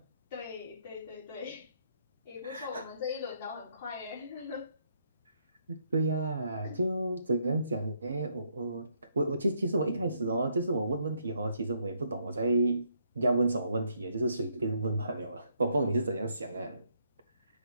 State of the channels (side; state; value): both; inverted; correlation -0.72